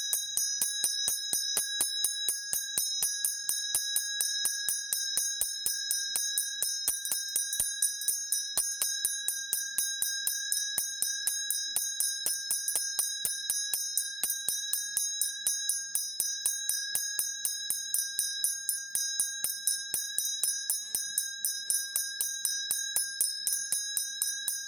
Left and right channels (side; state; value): both; normal; correlation 0.93